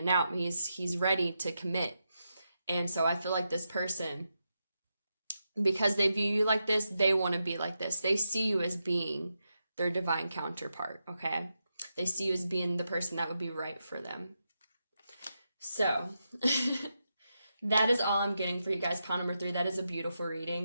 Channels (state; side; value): inverted; both; correlation -0.86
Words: out. He's ready to commit. And so I feel like this person, because they view you like this, they want to be like this. They see you as being their divine counterpart, okay? They see you as being the person that would be right for them. So that is all I'm getting for you guys. Pile number 3, that is a beautiful